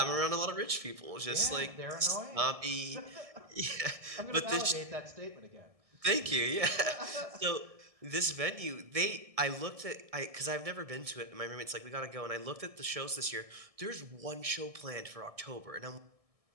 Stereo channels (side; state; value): left; late; 1.6 ms